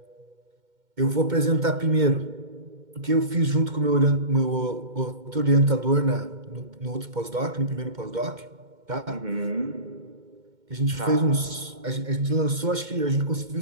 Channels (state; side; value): late; left; 2.1 ms